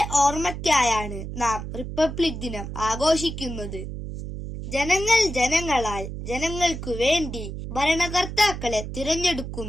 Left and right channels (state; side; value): noise; right; hum, 7 dB below the sound